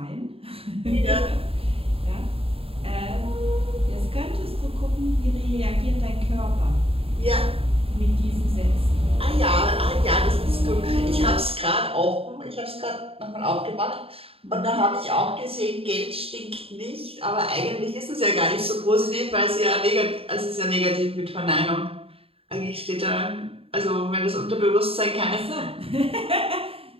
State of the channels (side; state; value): left; late; 0.27 ms